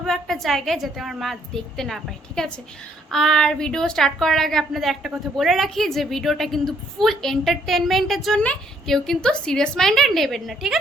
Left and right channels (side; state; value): both; normal; correlation 0.68